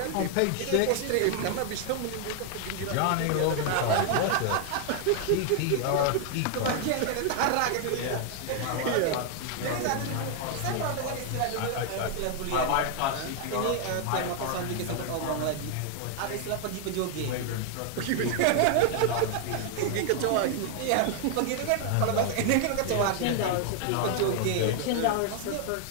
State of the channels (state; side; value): different; both; correlation 0.00